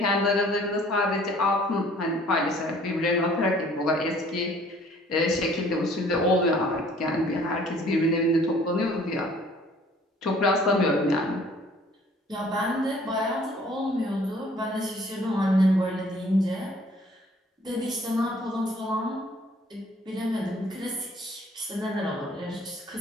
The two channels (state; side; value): normal; both; correlation 0.56